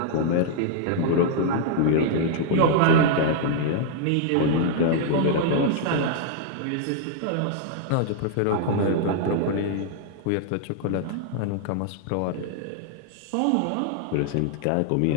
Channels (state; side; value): different; both; correlation 0.00